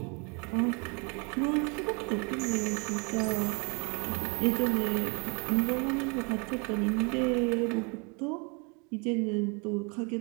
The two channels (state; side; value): quieter; left; 32.5 dB